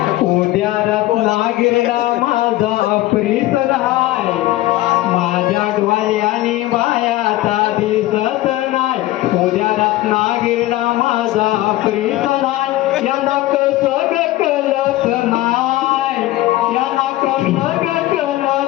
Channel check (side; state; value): right; quieter; 16.5 dB